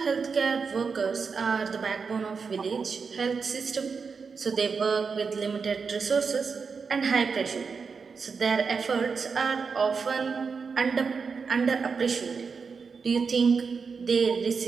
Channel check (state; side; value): quieter; left; 5.3 dB